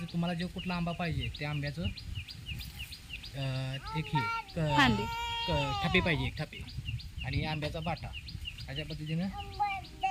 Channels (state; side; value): identical; both; correlation 1.00